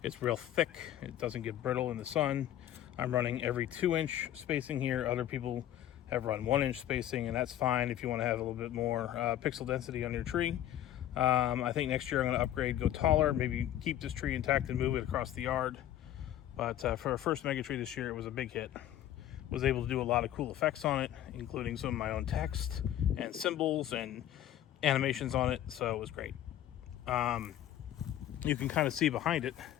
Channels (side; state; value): right; quieter; 12.1 dB